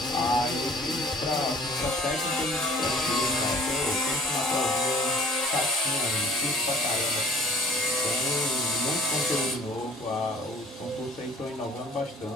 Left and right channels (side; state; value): both; normal; correlation 0.52